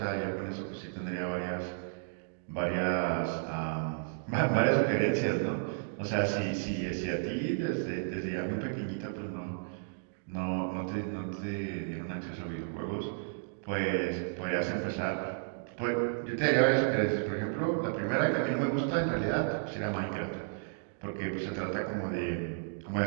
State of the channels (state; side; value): silent; left; digital silence